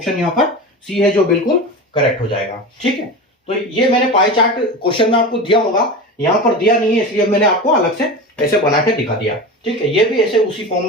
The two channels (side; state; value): both; normal; correlation 0.27